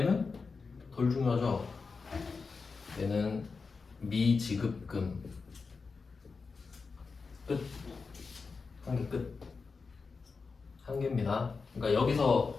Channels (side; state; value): right; quieter; 4.7 dB